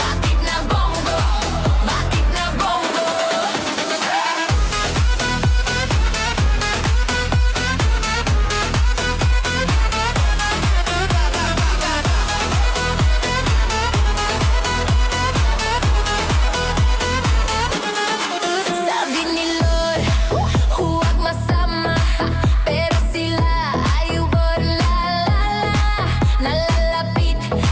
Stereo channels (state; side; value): identical; both; correlation 1.00